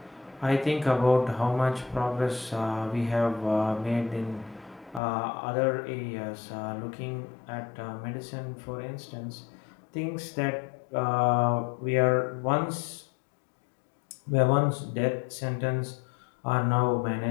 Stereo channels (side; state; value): right; drops out; at 5.0 s